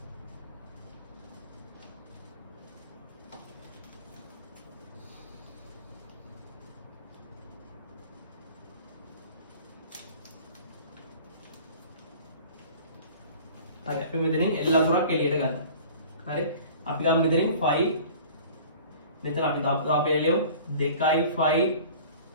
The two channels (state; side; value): inverted; both; correlation -0.45